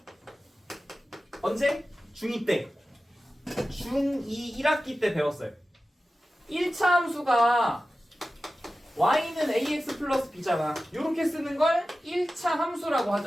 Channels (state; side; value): normal; both; correlation 0.94